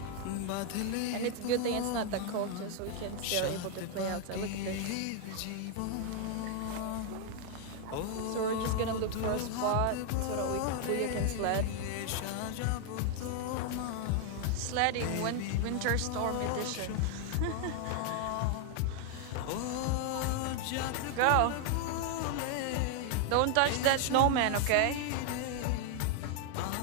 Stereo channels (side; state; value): both; different; correlation 0.00